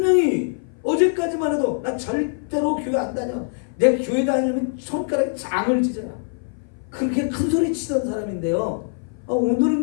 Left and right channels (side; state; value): right; silent; 57 dB below the other